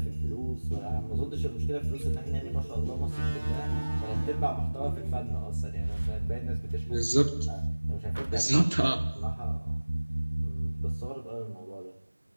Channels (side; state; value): both; inverted; correlation -1.00